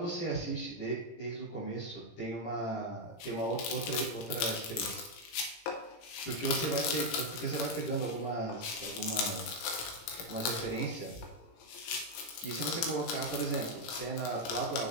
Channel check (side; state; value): right; late; 18 ms